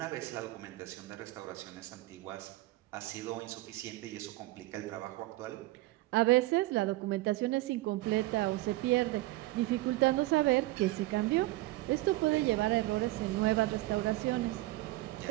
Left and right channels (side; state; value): left; quieter; 18.8 dB